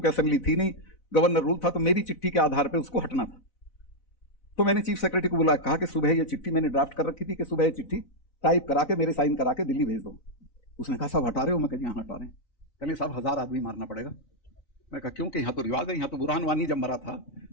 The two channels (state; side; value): late; right; 4.0 ms